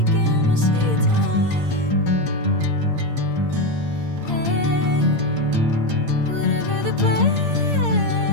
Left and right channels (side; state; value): left; late; 8.7 ms